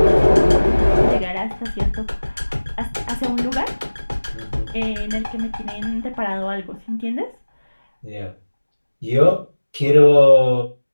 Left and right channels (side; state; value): both; inverted; correlation -1.00